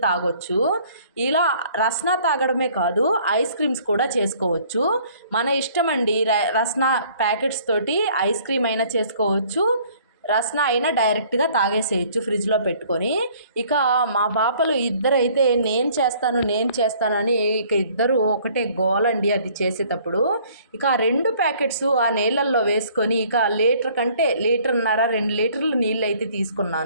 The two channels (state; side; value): inverted; both; correlation -0.57